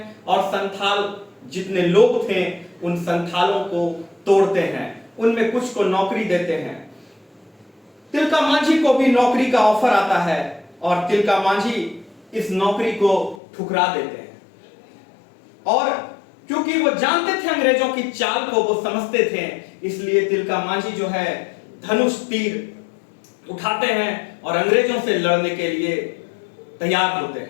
और संथाल जितने लोग थे उन संथालों को तोड़ते हैं, उनमें कुछ को नौकरी देते हैं। तिलका मांझी को भी नौकरी का ऑफर आता है और तिलका मांझी इस नौकरी को ठुकरा देते हैं। और क्योंकि वो जानते थे अंग्रेजों की चाल को, वो समझते थे, इसलिए तिलका मांझी जो है धनुष तीर उठाते हैं और अंग्रेजों से लड़ने के लिए तैयार होते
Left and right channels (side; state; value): right; drops out; at 13.4 s